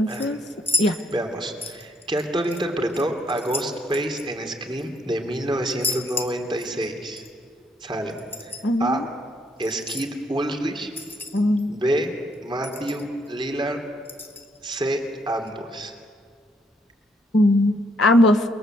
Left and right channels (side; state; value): both; normal; correlation 0.71